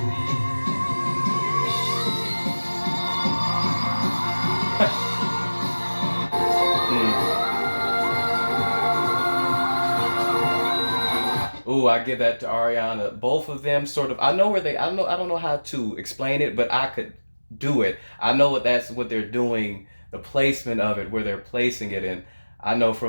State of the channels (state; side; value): inverted; both; correlation -1.00